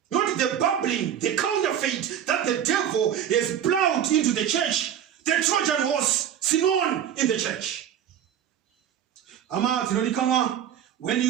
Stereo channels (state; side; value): quieter; left; 9.6 dB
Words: Not the babbling, the counterfeit that the devil has plowed into the church. The Trojan horse, Sinon in the church. When